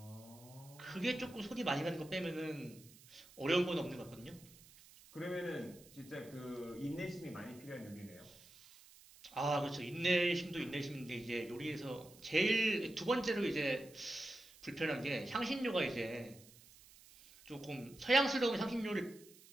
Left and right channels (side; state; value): right; noise; hiss, 22 dB below the sound